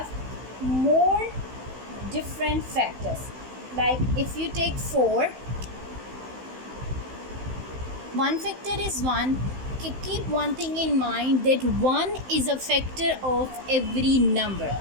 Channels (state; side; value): late; left; 16 ms